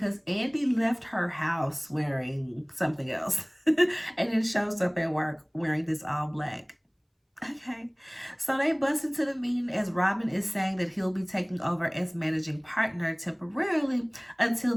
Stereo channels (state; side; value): identical; both; correlation 1.00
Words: Andy left her house wearing something else and then shows up at work wearing this all black. Okay, so they bust into the meeting as Robin is saying that he'll be taking over as managing partner temporarily until